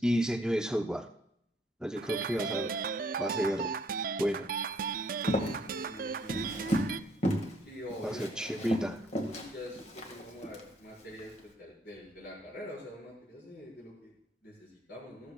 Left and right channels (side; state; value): both; normal; correlation 0.65